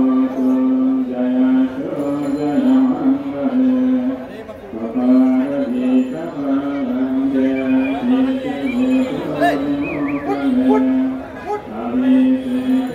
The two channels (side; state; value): both; identical; correlation 1.00